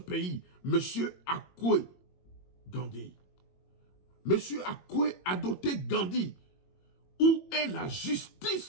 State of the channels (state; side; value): late; right; 22 ms